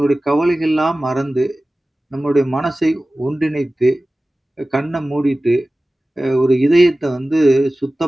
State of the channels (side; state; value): both; normal; correlation 0.97